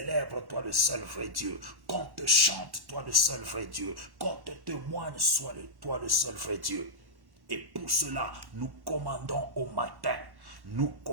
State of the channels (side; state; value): left; late; 1.1 ms